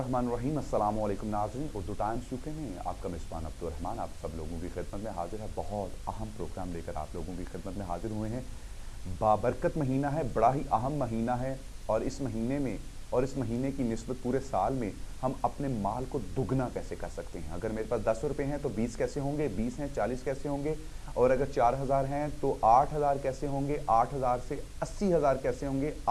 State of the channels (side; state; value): both; identical; correlation 1.00